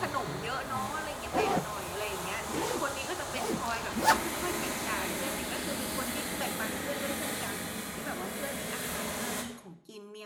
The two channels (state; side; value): identical; both; correlation 1.00